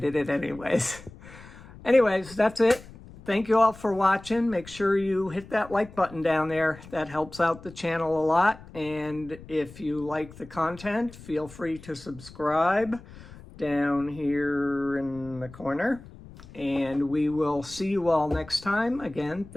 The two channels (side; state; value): left; noise; rumble, 18 dB below the sound